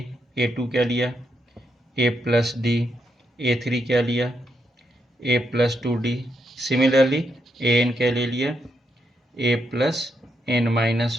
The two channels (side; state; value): both; normal; correlation 0.80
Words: A2 क्या लिया A प्लस डी, A3 क्या लिया A plus 2D, similarly AN क्या ले लिया A plus N minus